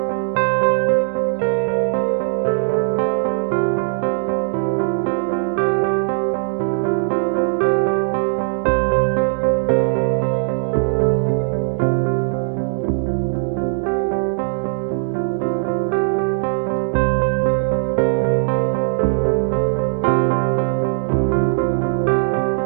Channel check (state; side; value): silent; left; digital silence